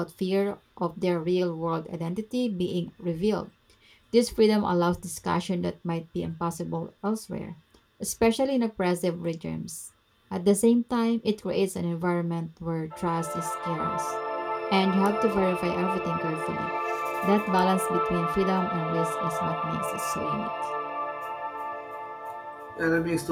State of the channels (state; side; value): identical; both; correlation 1.00